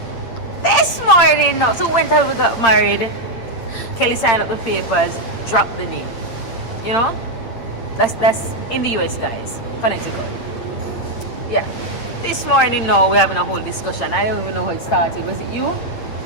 This morning, so whenever we got married, Kelly signed up the papers, dropped the name, That's in the US, guys, Connecticut. Yeah. This morning, we're having a whole discussion. I don't even know how it started. Was it you?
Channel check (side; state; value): right; late; 8.8 ms